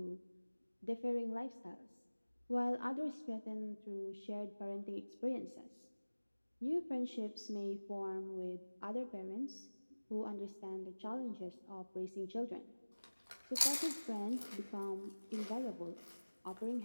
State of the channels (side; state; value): both; inverted; correlation -1.00